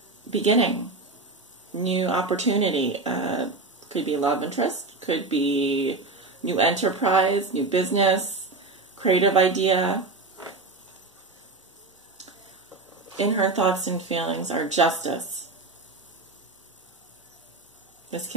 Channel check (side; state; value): left; quieter; 3.6 dB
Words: beginning, new opportunity. Could be love interest, could be new enterprise, new business, creative idea. in her thoughts and feelings are justice. This